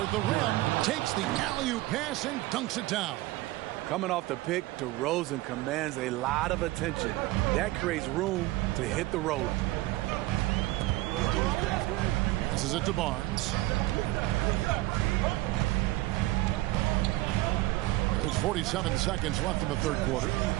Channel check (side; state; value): left; quieter; 18.6 dB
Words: the rim. Takes the alley-oop pass and dunks it down. Coming off the pick, DeRozan commands a lot of attention. That creates room to hit the roller. Passes it to Barnes. There's 47 seconds left in the third quarter.